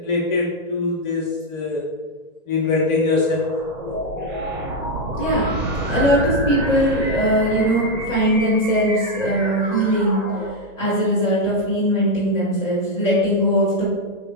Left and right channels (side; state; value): right; late; 1.9 ms